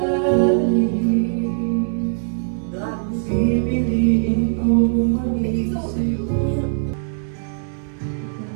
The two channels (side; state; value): left; silent; digital silence